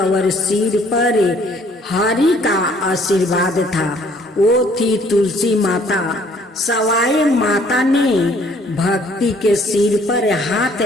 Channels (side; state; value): both; normal; correlation 0.60